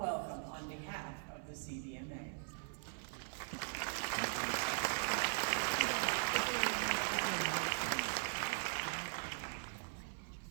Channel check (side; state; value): left; silent; 51 dB below the other